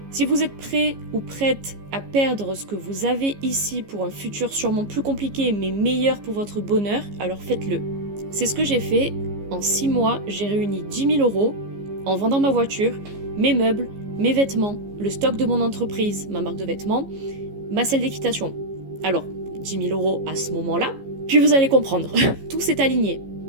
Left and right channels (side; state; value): left; late; 15 ms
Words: Si vous êtes prêt ou prête à perdre ce que vous avez ici pour un futur sûrement plus compliqué mais meilleur pour votre bonheur, alors faites-le. C'est ce que j'ai fait. En 6 mois, j'ai réuni 10 000 € en vendant ma voiture, mes meubles, mes vêtements, le stock de mon entreprise, ma marque de vêtements, ma salle d'équitation. Alors, 10 000 € à ce moment-là, puis vous allez comprendre. Tout s'est aligné.